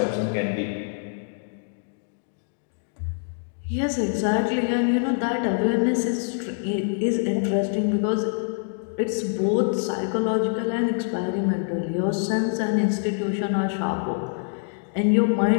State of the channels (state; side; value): silent; right; digital silence